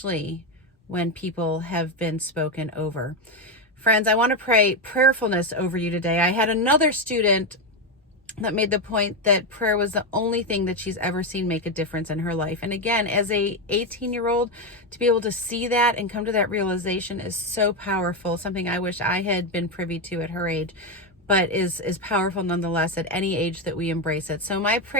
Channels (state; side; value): normal; both; correlation 0.08